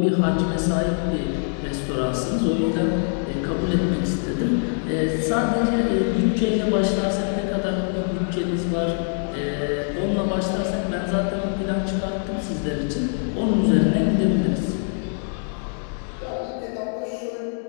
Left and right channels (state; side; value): silent; right; 63 dB below the other